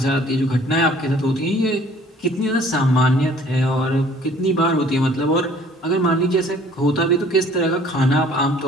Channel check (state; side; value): normal; both; correlation 0.54